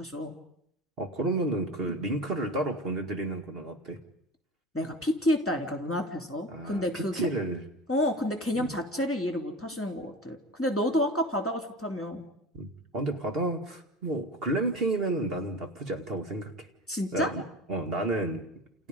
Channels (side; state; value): both; normal; correlation 0.33